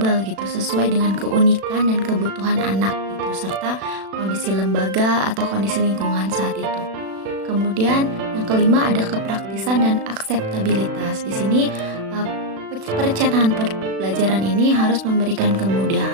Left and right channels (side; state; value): left; late; 36 ms